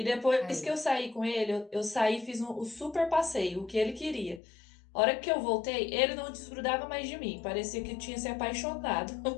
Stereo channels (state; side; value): drops out; right; at 4.4 s